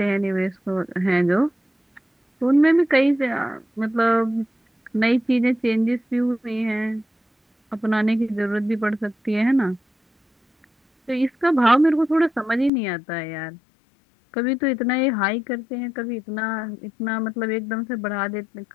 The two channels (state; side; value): drops out; right; at 12.7 s